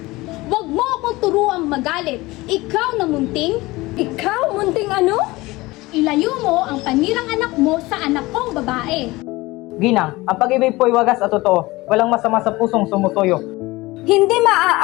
Huwag mo akong turuang magalit. Ikaw na munting. Ikaw munting ano? Ilayo mo ang panirang anak mo sa anak kong babae. Ginang, ang pag-ibig po'y wagas at totoo. Walang masama sa pusong sumusuyo. Hindi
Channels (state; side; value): quieter; right; 20.6 dB